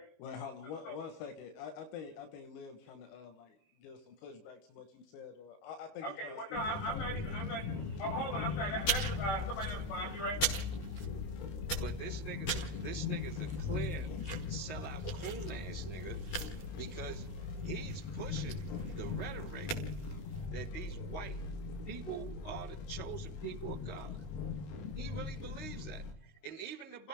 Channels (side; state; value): right; late; 19 ms